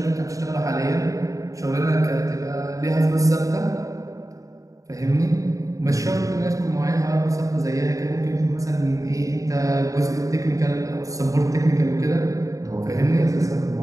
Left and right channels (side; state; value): left; late; 0.16 ms